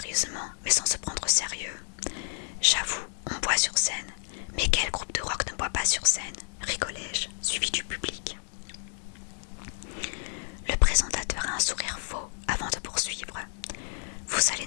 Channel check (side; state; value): right; silent; digital silence